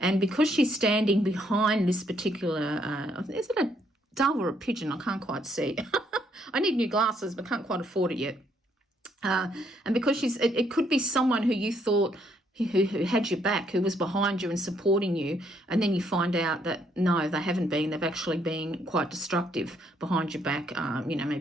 because she's standing behind this particular, is it a dove or a pigeon? I can't quite see. I need new glasses, but can't quite afford it yet. And because it could be someone who you thought who had your back, who was behind you and supporting you, and then you find out that no, they haven't been. They've actually been quite destructive behind your back,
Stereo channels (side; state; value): both; normal; correlation 0.71